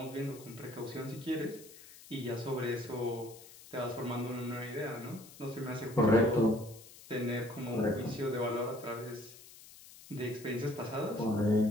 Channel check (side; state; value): left; noise; hiss, 19 dB below the sound